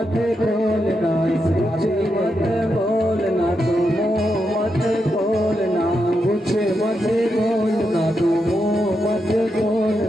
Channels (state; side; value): normal; both; correlation 0.84